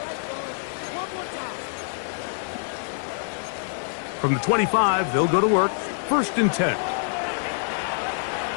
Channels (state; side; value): silent; right; digital silence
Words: From the 25, they'll go to work. 1st and 10.